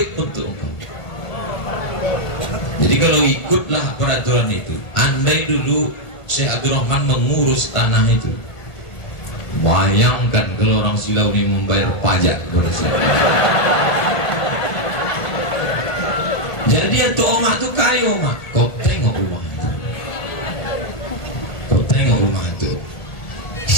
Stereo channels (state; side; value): late; right; 1.6 ms